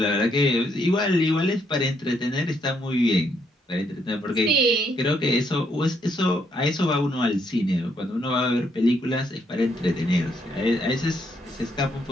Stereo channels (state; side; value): normal; both; correlation 0.73